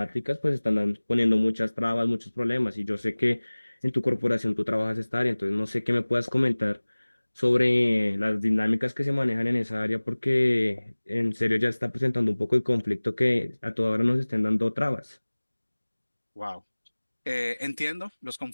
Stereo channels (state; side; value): inverted; both; correlation -1.00